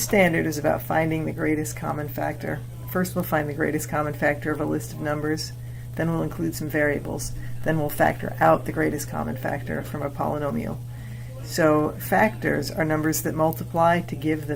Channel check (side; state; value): both; identical; correlation 1.00